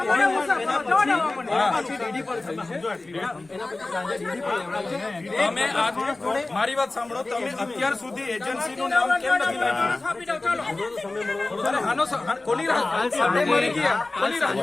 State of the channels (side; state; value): right; quieter; 3.1 dB